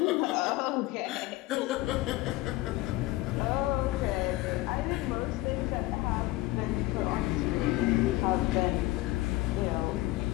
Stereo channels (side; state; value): right; quieter; 18.5 dB